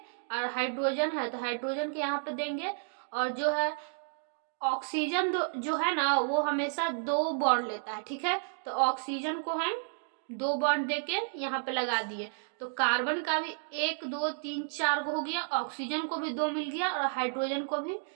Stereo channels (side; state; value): left; silent; digital silence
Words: और हाइड्रोजन है तो हाइड्रोजन के यहाँ पे देंगे। और जो है ऑक्सीजन जो है ना, वो हमेशा 2 बॉन्ड लेता है, ठीक है। तो ऑक्सीजन को हम 2 बॉन्ड देके यहाँ पे लगा दिए। तो कार्बन का भी 1 2 3 4 हो गया, ऑक्सीजन को भी 2 मिल गया और हाइड्रोजन को भी